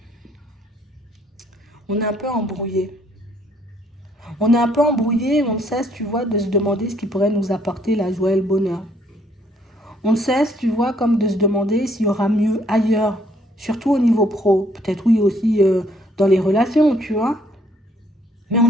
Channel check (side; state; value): both; normal; correlation 0.66